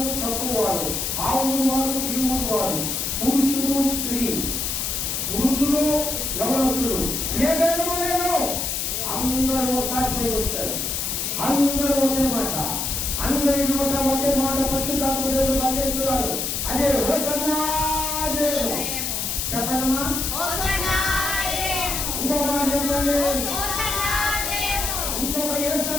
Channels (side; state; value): left; noise; hiss, 1 dB below the sound